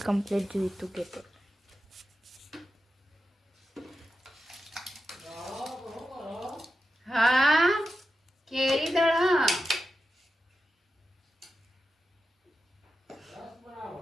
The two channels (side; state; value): both; normal; correlation 0.90